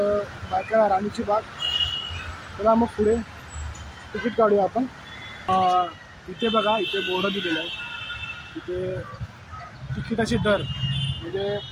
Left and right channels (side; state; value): both; identical; correlation 1.00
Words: भायखळा राणीची बाग। चला मग पुढे तिकीट काढूया आपण। इथे बघा, इथे बोर्ड दिलेलं आहे। इथे तिकिटाचे दर म्हणजे